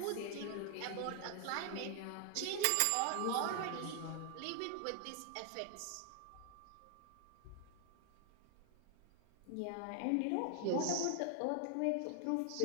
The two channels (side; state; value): both; different; correlation 0.00